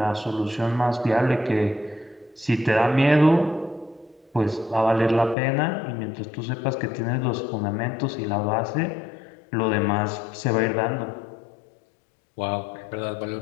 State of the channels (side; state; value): right; drops out; at 5.4 s